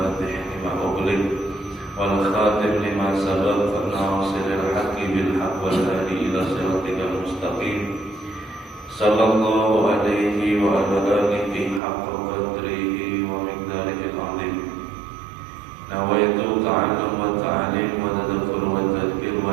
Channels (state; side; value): drops out; left; at 11.8 s